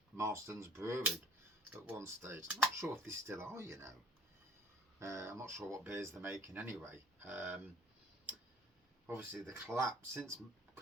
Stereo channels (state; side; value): normal; both; correlation 0.53